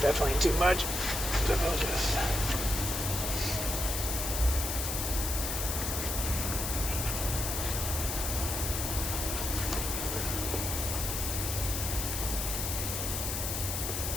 too much. So I'll just...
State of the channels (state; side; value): noise; left; hiss, 2 dB below the sound